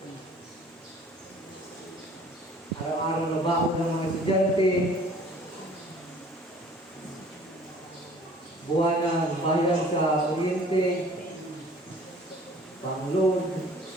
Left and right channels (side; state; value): both; normal; correlation 0.51